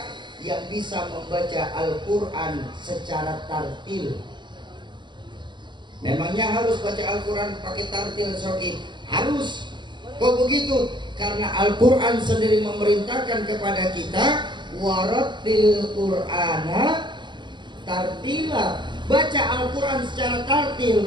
yang bisa membaca Al-Quran secara tartil. Memangnya harus baca Al-Quran pakai tartil, Soki? Harus. Kok begitu? Karena Al-Quran sendiri memerintahkan kepada kita, warattil Qur'ana tartila. Baca Al-Quran secara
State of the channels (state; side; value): late; left; 0.22 ms